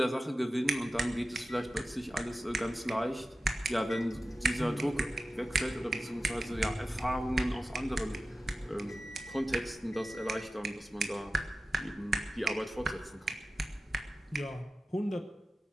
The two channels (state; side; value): normal; both; correlation 0.94